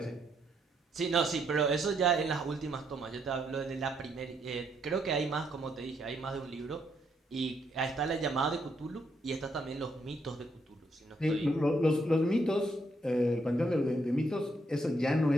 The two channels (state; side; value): normal; both; correlation 0.75